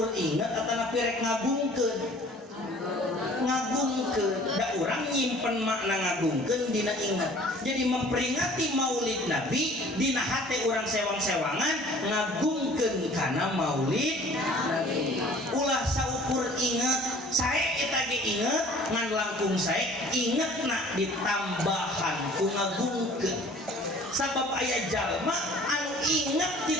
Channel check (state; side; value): normal; both; correlation 0.50